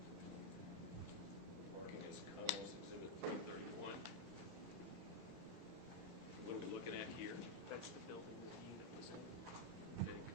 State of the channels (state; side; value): late; left; 22 ms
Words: Marking as Commonwealth Exhibit 331. What are we looking at here? That's the building that the unit was in. Okay,